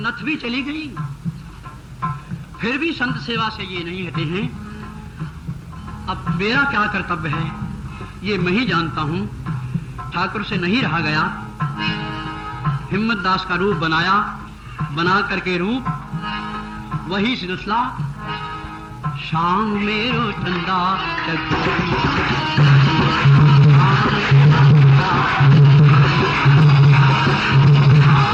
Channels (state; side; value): identical; both; correlation 1.00